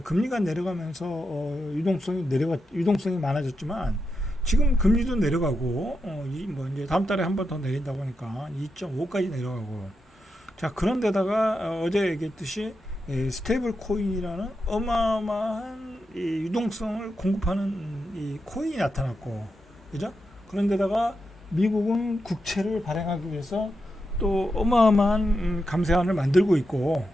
금리가 내려가면서 유동성이 많아졌지만 지금 금리도 내려가고 이제 다음 달에 한 번 더 내린다고 하니까 2.5까지 내려가고. 자, 그런데다가 어제 얘기했듯이 스테이블 코인이라는 어마어마한 이 유동성을 공급하는 이 코인이 나타났고, 그죠? 그런데다가 미국은 국채를 발행하기 위해서 또 어마어마한 감세안을 만들고 있고,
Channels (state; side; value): normal; both; correlation 0.86